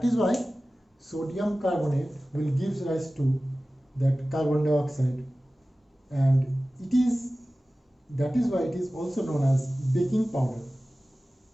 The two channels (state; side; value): normal; both; correlation 0.96